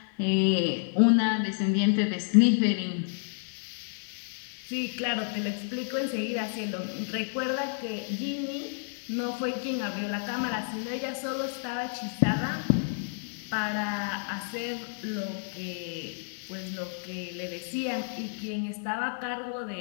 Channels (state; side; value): silent; right; digital silence